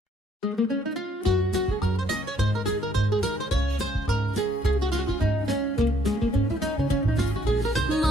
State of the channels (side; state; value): both; normal; correlation 0.65